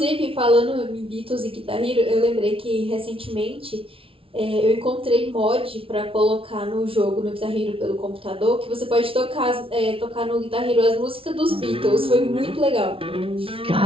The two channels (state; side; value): late; left; 0.26 ms